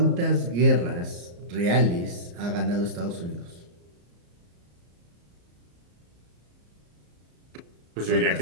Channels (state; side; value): late; left; 34 ms